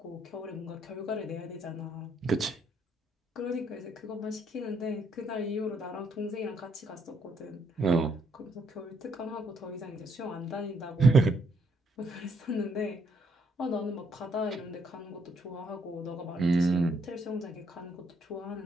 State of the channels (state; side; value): normal; both; correlation 0.70